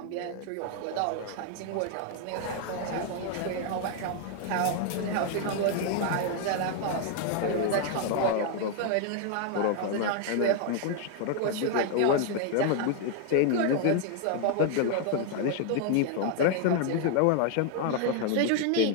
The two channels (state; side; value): different; both; correlation 0.00